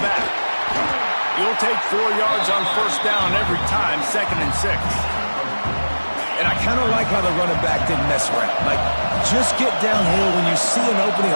back. You'll take 4 yards on 1st down every time, 2nd and 6. And I kind of like how the running back didn't mess around. Like, just get downhill when you see an opening.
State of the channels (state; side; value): inverted; both; correlation -1.00